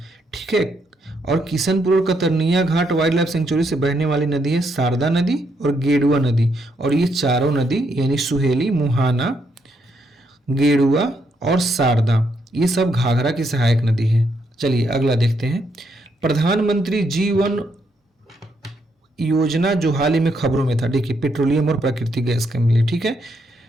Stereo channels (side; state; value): both; normal; correlation 0.76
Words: ठीक है, और किशनपुर और कतरनिया घाट वाइल्ड लाइफ सेंचुरी से बहने वाली नदी है शारदा नदी और गेडुआ नदी। और ये चारों नदी यानी सुहेली, मुहाना, गेडुआ और शारदा, ये सब घाघरा की सहायक नदी है। चलिए अगला देखते हैं। प्रधानमंत्री जीवन योजना जो हाल ही में खबरों में था, देखिए पेट्रोलियम और प्राकृतिक गैस के लिए, ठीक है,